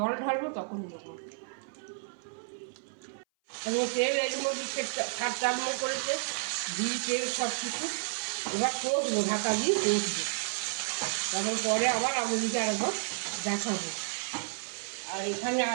ঢালবো তখন দেবো। এবং তেল এর মধ্যে ছাড় করেছে, ঘি তেল সব কিছু। এবার কষবো, ঢাকা দিয়ে কষবো, তারপর পরে আবার আপনাদেরকে আরেকবার দেখাবো। আর এখানে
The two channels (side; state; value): left; silent; 56 dB below the other